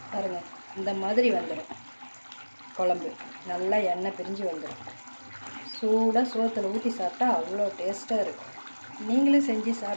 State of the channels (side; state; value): both; inverted; correlation -1.00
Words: பாருங்க. இந்த மாதிரி வந்துடும் குழம்பு, நல்லா எண்ணெய் பிரிஞ்சு வந்துடும். சூடாக சோத்தில் ஊற்றி சாப்பிட்டா அவ்வளோ டேஸ்ட்டாக இருக்கும். நீங்களும் செஞ்சு